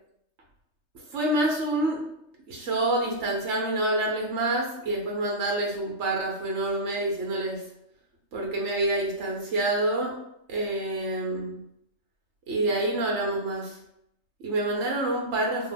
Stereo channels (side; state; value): left; late; 3.3 ms